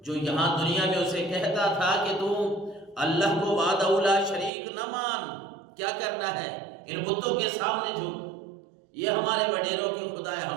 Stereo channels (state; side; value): drops out; left; at 4.5 s